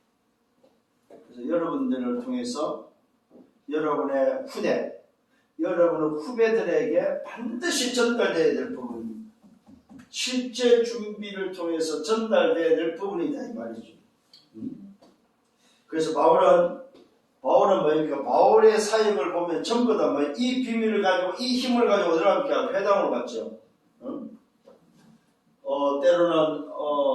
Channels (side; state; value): both; identical; correlation 1.00